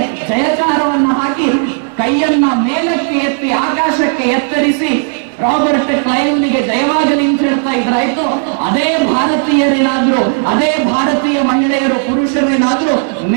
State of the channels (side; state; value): left; silent; 60 dB below the other